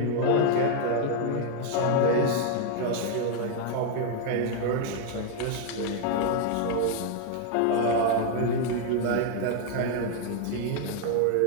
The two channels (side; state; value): both; different; correlation 0.00